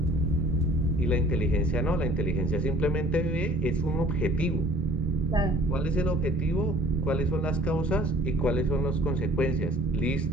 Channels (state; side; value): normal; both; correlation 0.51